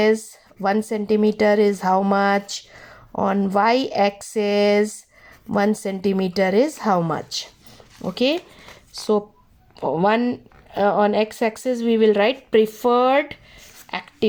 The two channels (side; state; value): both; identical; correlation 1.00